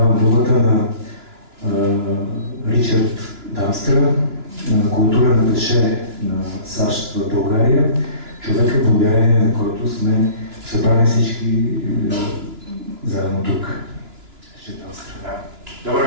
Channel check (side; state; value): left; late; 2.9 ms